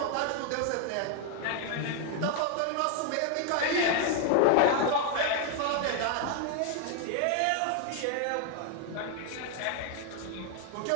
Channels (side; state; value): both; different; correlation 0.00